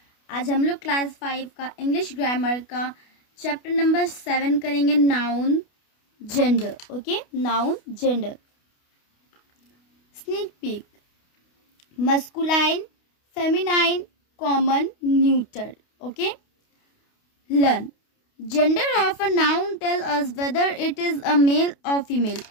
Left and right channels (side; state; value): right; late; 28 ms